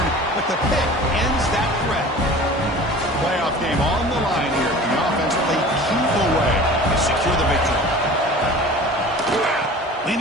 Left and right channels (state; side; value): normal; both; correlation 0.41